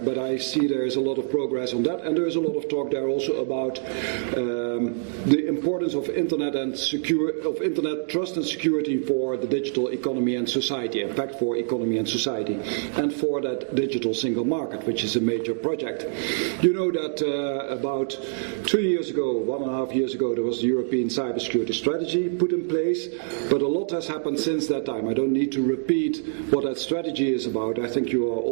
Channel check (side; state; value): left; silent; digital silence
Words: I see there is a lot of progress on that, and there is a lot of talk there also about the importance of Internet trust and security for the digital economy and society, in fact for economy and society, and for that digital single market, which is a major project. You know that about 2 years ago, 1.5 years ago, there was the European Cybersecurity strategy put in place, but a lot has happened since that time. I don't need to repeat what that strategy is about. I think you are